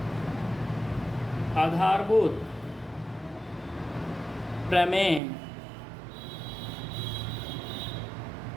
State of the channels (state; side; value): drops out; left; at 5.2 s